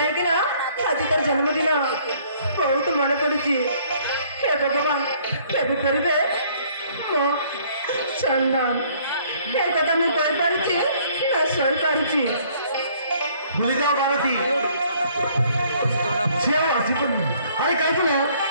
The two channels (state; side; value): inverted; both; correlation -0.61